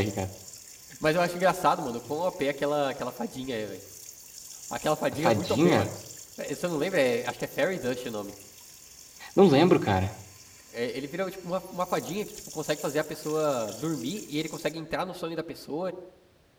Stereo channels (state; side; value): identical; both; correlation 1.00